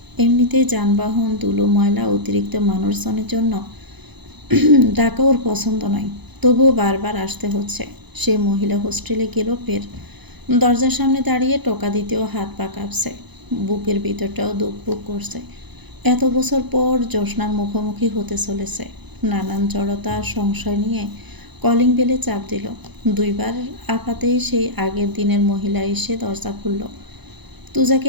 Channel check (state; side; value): late; left; 0.99 ms